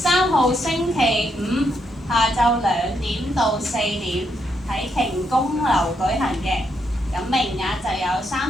號星期5下晝2點到4點喺瓊公樓舉行嘅。咁名額就有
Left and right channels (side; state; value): both; normal; correlation 0.78